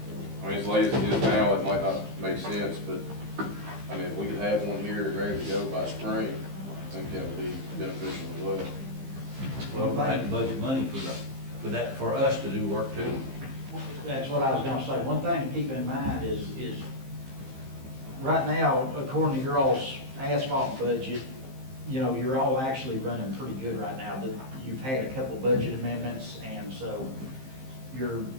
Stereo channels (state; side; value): late; left; 15 ms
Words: as late as it is now, it might not make sense, but, I mean, if we could have one here ready to go by spring, I think that would be beneficial as well. Well, we're gonna have to budget money for that, for us to do work too. That's what I was gonna say. One thing to keep in mind is right now, according to your all's asphalt budget, you know, you're all actually running pretty good right now. That you've had a couple budget amendments, and so